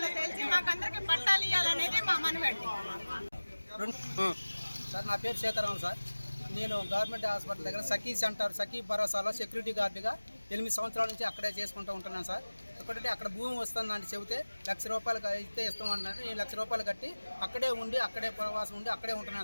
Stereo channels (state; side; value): inverted; both; correlation -1.00